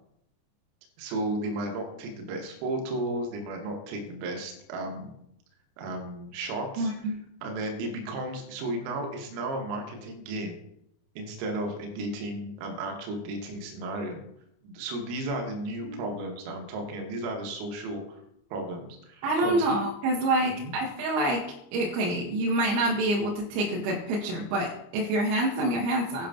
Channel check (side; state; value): left; late; 29 ms